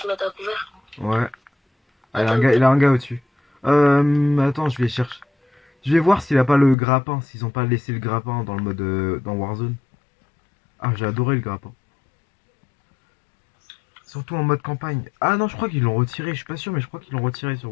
mettre à couvert. Ouais. Ah, Attends, il a un gars au-dessus. Attends, je vais chercher. Je vais voir s'il a pas le grappin, s'ils ont pas laissé le grappin dans le mode dans Warzone. Ah, j'ai adoré le grappin. Surtout en mode campagne. Ah non, je crois qu'ils l'ont retiré, je suis pas sûr, mais je crois qu'ils l'ont retiré sur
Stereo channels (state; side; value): drops out; right; at 6.8 s